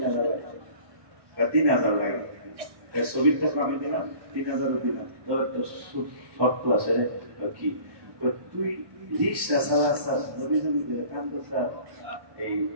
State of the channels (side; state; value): left; late; 1.1 ms